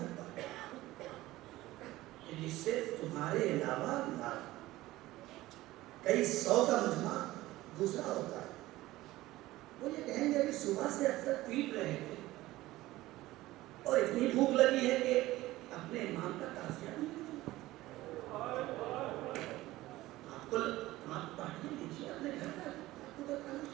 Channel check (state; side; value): quieter; left; 17.3 dB